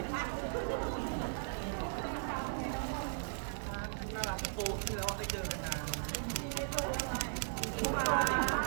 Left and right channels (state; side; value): silent; left; digital silence